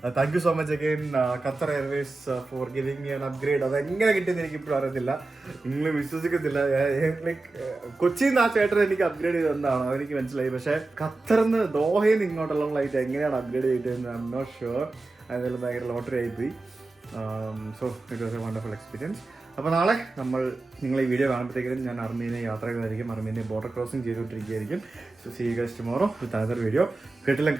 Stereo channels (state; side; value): quieter; left; 3.2 dB